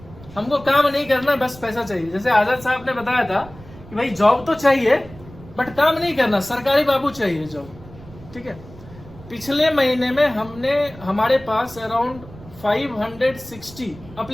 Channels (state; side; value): noise; right; rumble, 19 dB below the sound